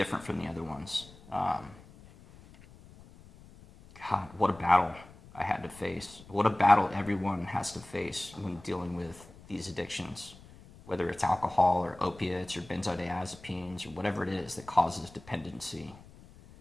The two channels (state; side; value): noise; left; rumble, 21 dB below the sound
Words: from the other ones. God, what a battle I had to face. What a battle everyone has to face when dealing with these addictions, whether it's alcohol or opiates or benzodiazepines or whatever it is that causes dependency.